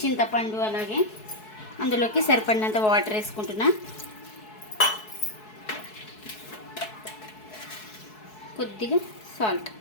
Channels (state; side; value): late; right; 4.7 ms